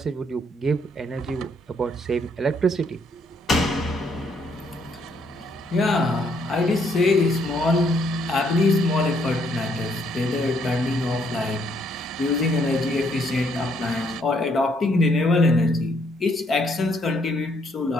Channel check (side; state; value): both; normal; correlation 0.70